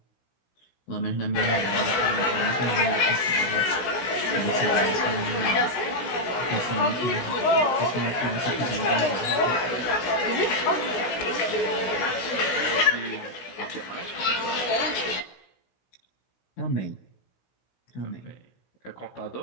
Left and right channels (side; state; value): right; late; 16 ms